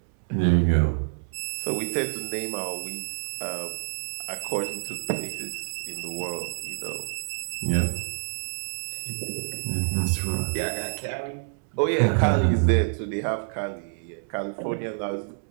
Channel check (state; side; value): silent; left; 60 dB below the other